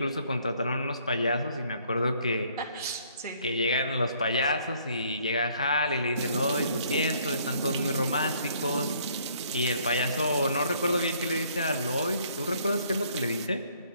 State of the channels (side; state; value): both; inverted; correlation -0.63